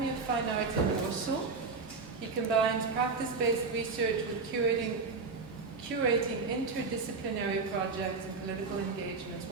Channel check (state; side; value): quieter; left; 4.4 dB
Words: of Fine Arts in Warsaw, he combines practice-based research with curating interdisciplinary projects and political engagements